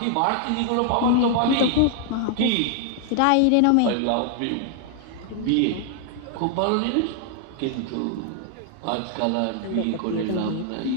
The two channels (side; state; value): both; different; correlation 0.00